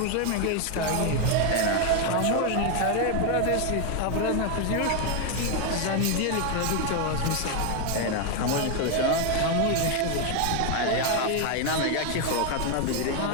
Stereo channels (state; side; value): different; both; correlation 0.01